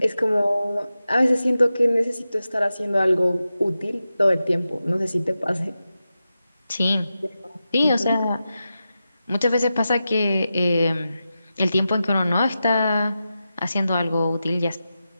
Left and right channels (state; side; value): inverted; both; correlation -0.91